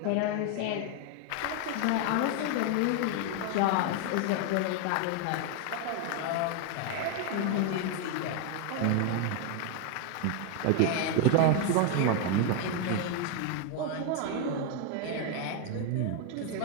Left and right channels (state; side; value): different; both; correlation 0.01